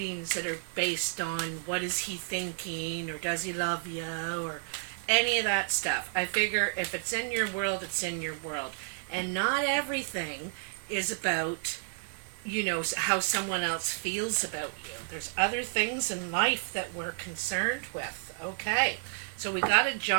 that are based on what is he thinking, or does he love you, or any of that stuff. I figure if it's in your world, it's in your world. And not everything is about, you know, how someone else feels about you. There's other things in life that we're concerned with. Okay, so we got a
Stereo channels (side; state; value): left; silent; 57 dB below the other